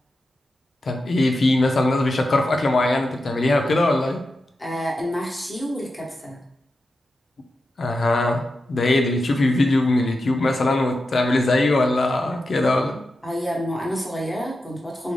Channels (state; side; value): normal; both; correlation 0.90